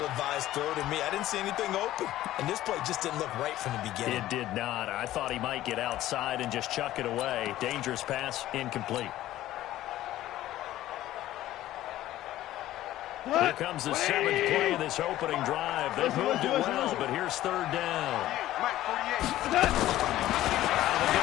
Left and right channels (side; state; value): right; quieter; 14.4 dB